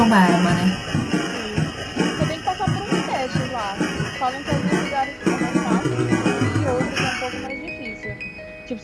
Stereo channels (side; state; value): both; identical; correlation 1.00